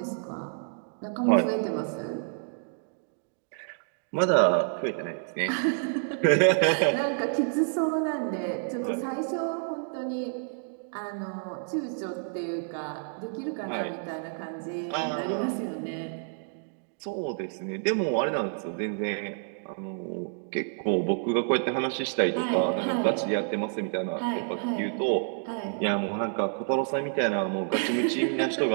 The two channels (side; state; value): left; silent; digital silence